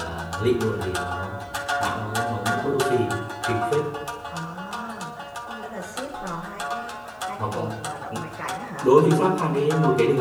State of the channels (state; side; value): identical; both; correlation 1.00